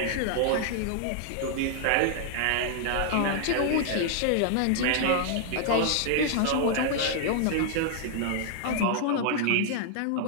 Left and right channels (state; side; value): different; both; correlation 0.00